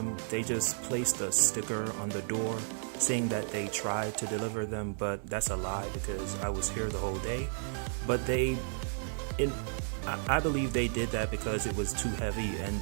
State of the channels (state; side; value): silent; left; digital silence